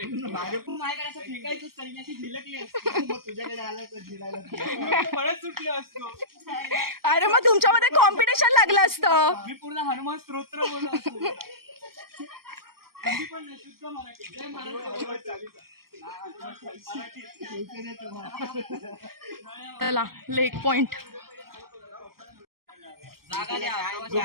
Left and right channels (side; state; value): left; late; 0.93 ms